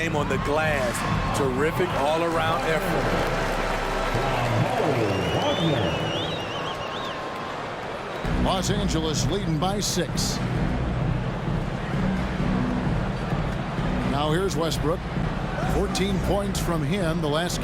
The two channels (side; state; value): both; identical; correlation 1.00